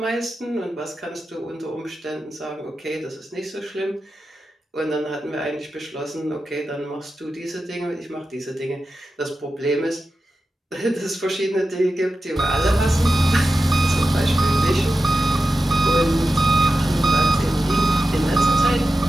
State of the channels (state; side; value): normal; both; correlation 0.91